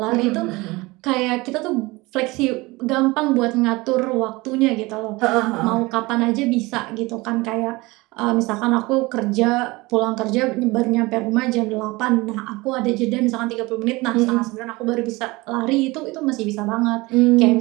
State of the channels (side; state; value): left; quieter; 22.5 dB